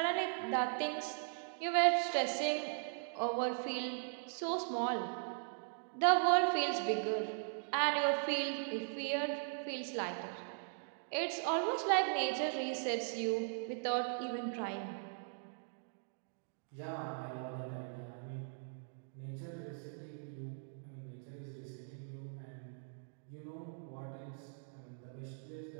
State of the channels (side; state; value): left; silent; digital silence